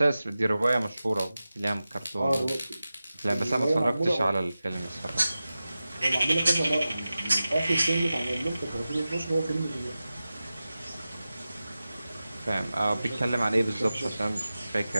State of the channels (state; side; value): inverted; both; correlation -0.94